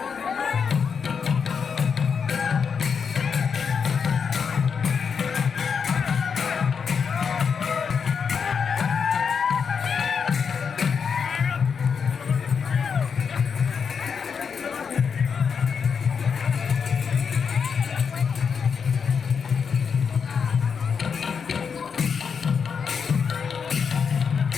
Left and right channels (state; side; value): quieter; right; 6.3 dB